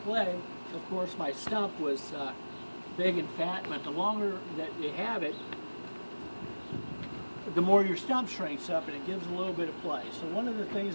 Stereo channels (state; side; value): inverted; both; correlation -1.00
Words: leg, of course my stump was big and fat, but the longer that you have it, the more your stump shrinks up and it gives a little bit of play. So one of the